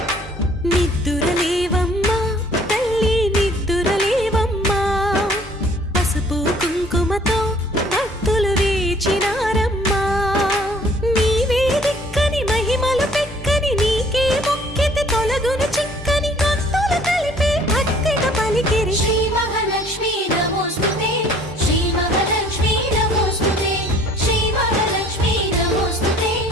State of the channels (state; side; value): normal; both; correlation 0.55